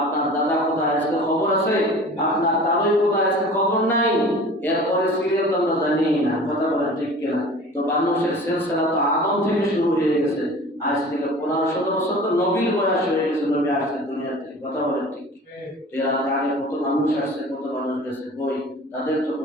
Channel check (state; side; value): normal; both; correlation 0.42